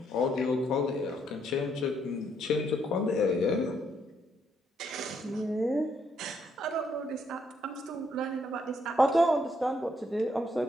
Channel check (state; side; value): normal; both; correlation 0.73